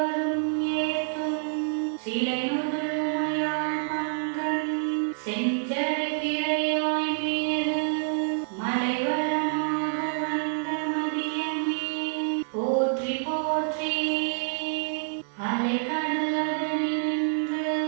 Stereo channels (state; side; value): silent; left; digital silence